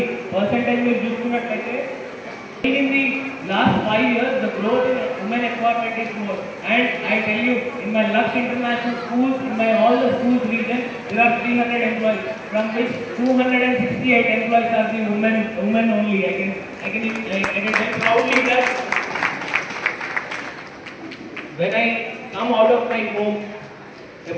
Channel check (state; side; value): identical; both; correlation 1.00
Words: పర్సెంటేజ్ మీరు చూసుకున్నట్లయితే in the last 5 years the growth in women empowerment is more, and I tell you in my Lux International schools, in my all the schools region there are 300 employees, from which 268 employees are the women only. I can tell proudly that when I come out of my home,